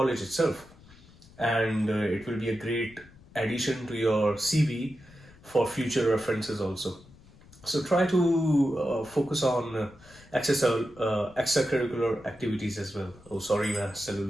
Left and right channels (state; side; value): noise; left; rumble, 24 dB below the sound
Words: itself, and it will be a great addition to your CV for future references also. So try to focus on extracurricular activities as well. Oh, sorry,